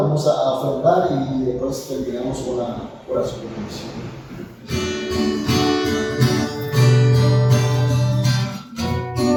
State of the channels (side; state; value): both; identical; correlation 1.00